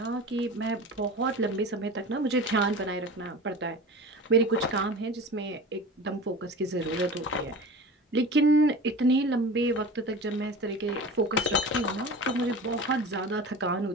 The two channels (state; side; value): normal; both; correlation 0.35